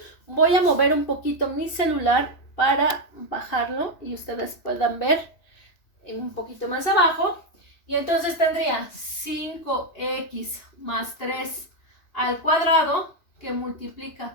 Voy a mover un poquito mi celular para bajarlo y ustedes puedan ver un poquito más abajo. Y entonces tendría 5x más 3 al cuadrado, que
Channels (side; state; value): right; late; 2.8 ms